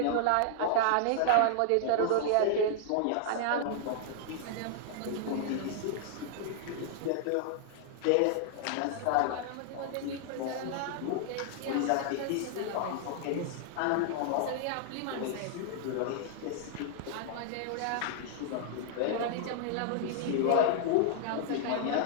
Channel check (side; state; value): both; different; correlation -0.01